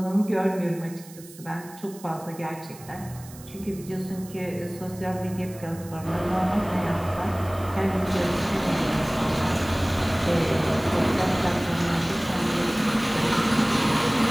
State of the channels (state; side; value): noise; right; hiss, 19 dB below the sound